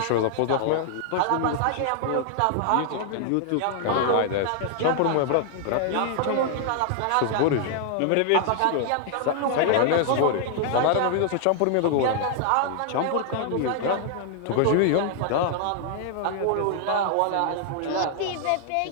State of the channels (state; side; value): different; both; correlation -0.01